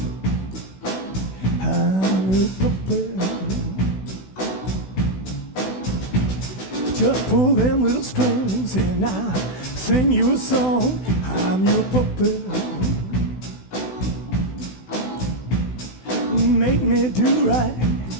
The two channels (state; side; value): late; right; 16 ms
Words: I'm your puppet. Just pull them little strings and I'll sing you a song. I'm your puppet. Make me do right